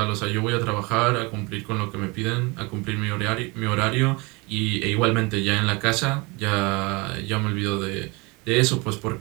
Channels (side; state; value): left; quieter; 26.8 dB